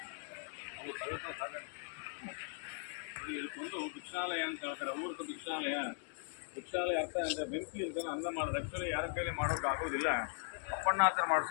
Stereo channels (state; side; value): silent; right; 52 dB below the other